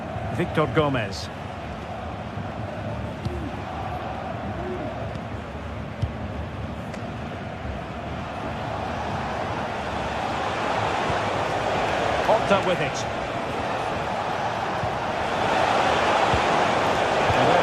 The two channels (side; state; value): both; identical; correlation 1.00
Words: Victor Gomez. Horta with it. Well,